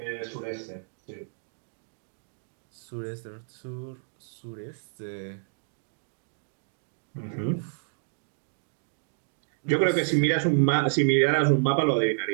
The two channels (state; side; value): silent; left; digital silence